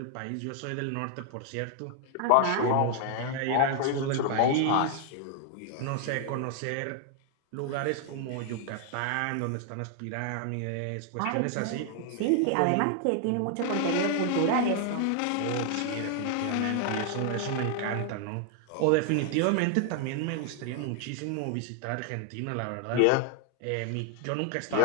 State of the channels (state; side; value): different; both; correlation 0.00